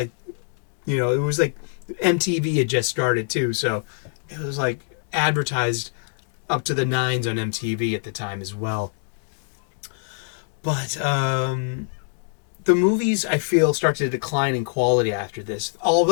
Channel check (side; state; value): right; silent; 63 dB below the other